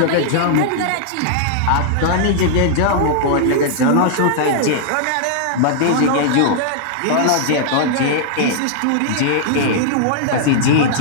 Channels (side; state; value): both; different; correlation -0.01